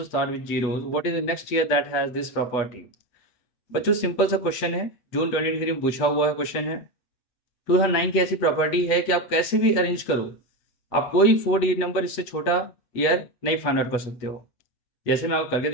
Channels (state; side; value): late; right; 8.3 ms